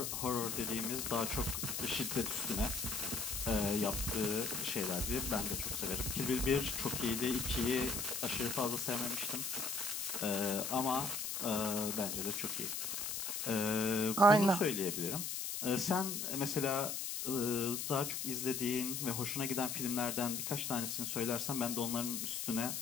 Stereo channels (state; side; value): noise; left; hiss, 3 dB below the sound